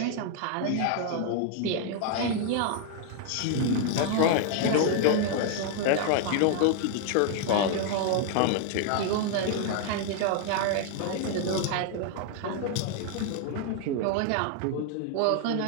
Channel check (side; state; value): both; different; correlation 0.00